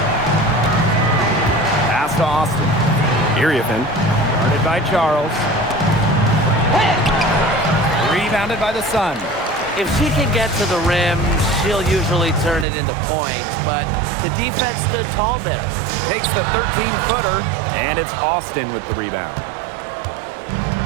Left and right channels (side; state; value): left; drops out; at 12.7 s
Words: Pass to Austin. Iriathan. Guarded by Charles. Rebounded by the Sun. If she can get to the rim, she'll usually turn it into points, but the defense stood tall there. Takes the 13-footer, and it's Austin with the rebound.